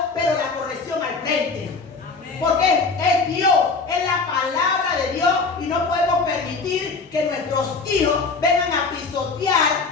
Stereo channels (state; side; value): quieter; right; 4.4 dB